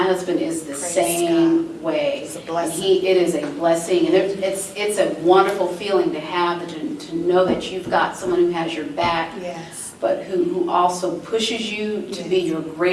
husband is the Praise same way. It's a And blessing. it is a blessing, and it's a wonderful feeling to have, to know that you've got someone who has your back, Yes. but who also pushes you to be your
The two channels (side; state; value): both; identical; correlation 1.00